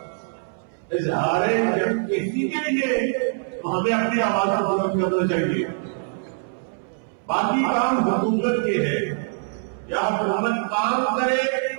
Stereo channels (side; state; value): left; silent; 62 dB below the other